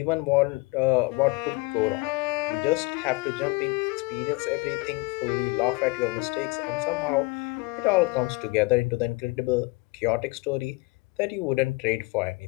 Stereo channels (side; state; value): right; quieter; 25.9 dB